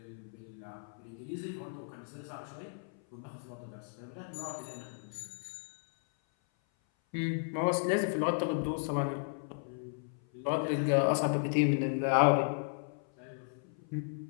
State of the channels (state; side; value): silent; right; 55 dB below the other